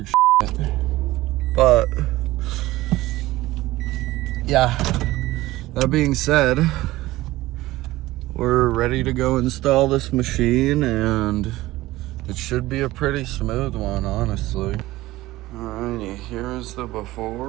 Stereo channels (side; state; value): left; quieter; 17.6 dB